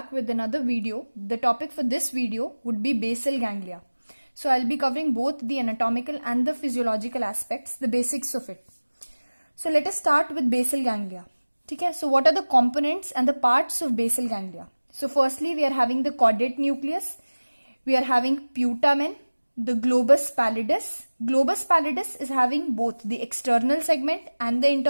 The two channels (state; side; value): inverted; both; correlation -1.00